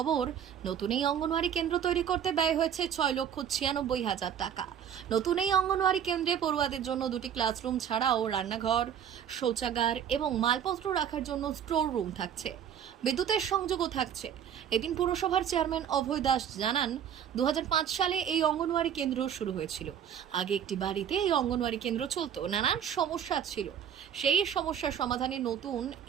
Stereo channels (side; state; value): left; quieter; 8.9 dB